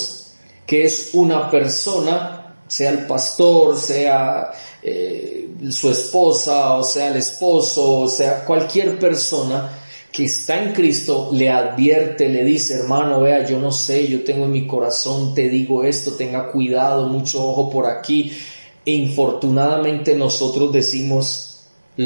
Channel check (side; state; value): both; inverted; correlation -1.00